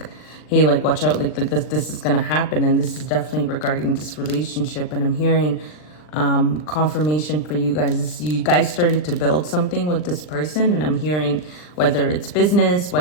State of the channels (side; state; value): right; late; 39 ms